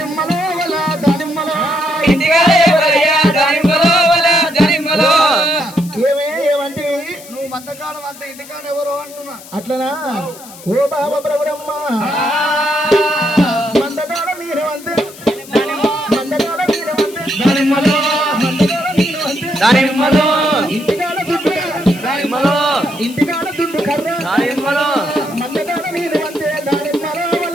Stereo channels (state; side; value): noise; left; hiss, 18 dB below the sound